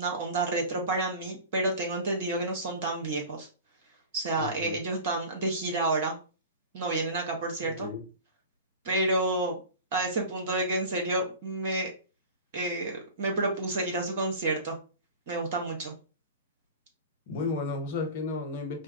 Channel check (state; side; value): inverted; both; correlation -0.35